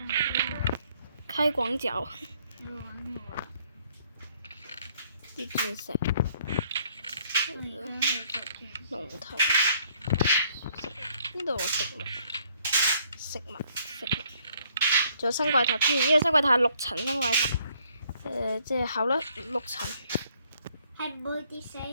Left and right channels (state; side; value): inverted; both; correlation -0.65